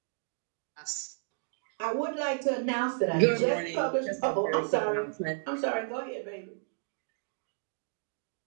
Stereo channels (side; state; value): left; silent; digital silence